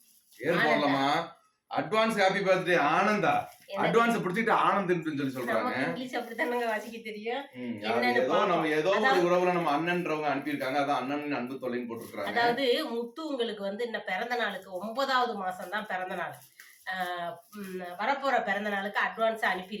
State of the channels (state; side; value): identical; both; correlation 1.00